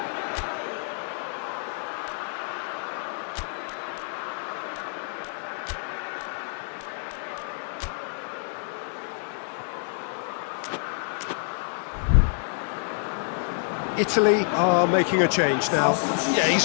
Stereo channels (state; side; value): silent; right; digital silence